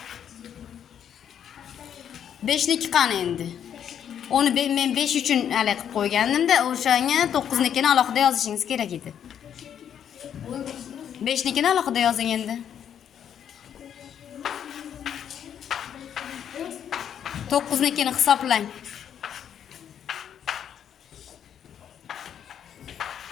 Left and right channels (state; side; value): quieter; right; 9.0 dB